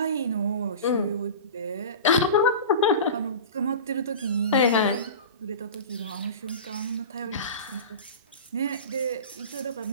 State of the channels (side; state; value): both; inverted; correlation -0.32